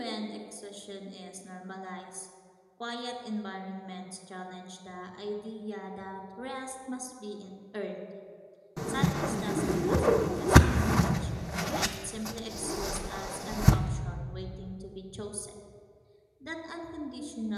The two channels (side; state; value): both; identical; correlation 1.00